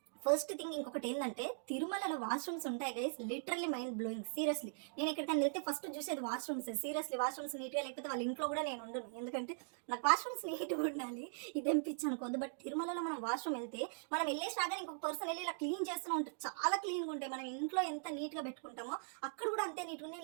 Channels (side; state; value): left; silent; digital silence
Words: ఫస్ట్ థింగ్ ఇంకొకటి ఏంటంటే, తిరుమలలో వాష్రూమ్స్ ఉంటాయి guys, literally mind blowing. Seriously నేను ఎక్కడికైనా వెళ్తే ఫస్ట్ చూసేది వాష్రూమ్స్. సీరియస్లీ వాష్రూమ్స్ నీట్గా లేకపోతే వాళ్ళ ఇంట్లో కూడా నేను ఉండను, ఎందుకంటే నాకు వాష్రూమ్స్ నీట్గా ఉండాలి. ఇదేం పిచ్చి అనుకోద్దు. బట్ తిరుమలలో మనం వాష్రూమ్ వెళ్తే మనం వెళ్ళేసి రాగానే ఇంకొక పర్సన్ వెళ్ళి ఇలా క్లీన్ చేస్తూనే ఉంటారు, చాలా క్లీన్గా ఉంటాయి. మనం ఇంట్లో ఎంత నీట్గా పెట్టుకుంటామో అక్కడ కూడా అంతే నీట్గా.